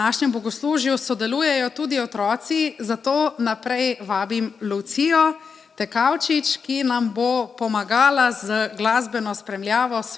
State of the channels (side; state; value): right; quieter; 5.7 dB